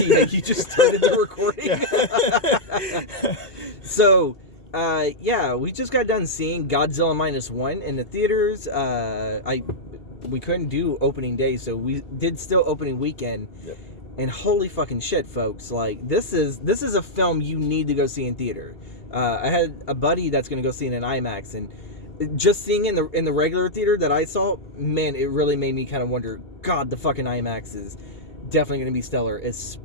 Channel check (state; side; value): late; right; 2.8 ms